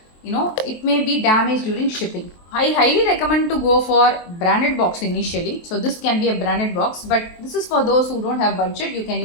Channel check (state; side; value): late; right; 23 ms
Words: it may be damaged during shipping. I highly recommend to go for branded box initially. So this can be a branded box, but this is for those who don't have budget. You can